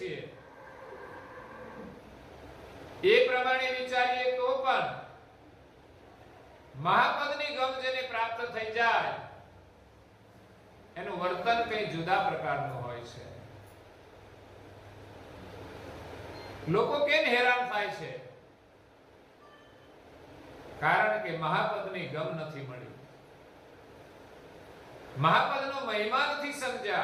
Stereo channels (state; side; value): identical; both; correlation 1.00